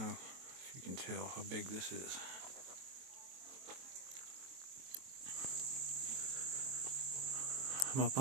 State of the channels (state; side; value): late; left; 23 ms